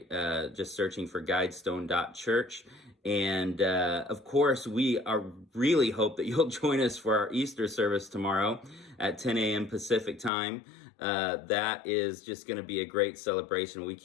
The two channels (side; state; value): right; drops out; at 10.3 s